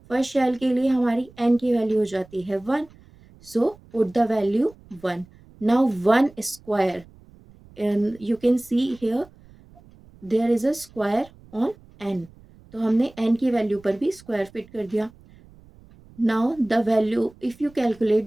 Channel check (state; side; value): noise; right; rumble, 25 dB below the sound